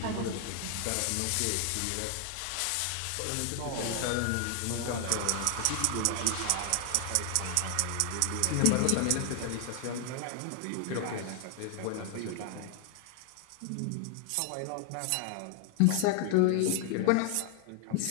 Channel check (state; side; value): different; both; correlation 0.00